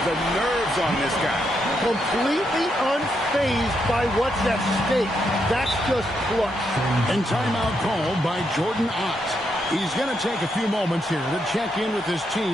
The nerves on this guy. Completely unfazed by what's at stake. That's just clutch. And timeout called by Jordan Ott. He's going to take a few moments here to check in with his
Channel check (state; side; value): normal; both; correlation 0.80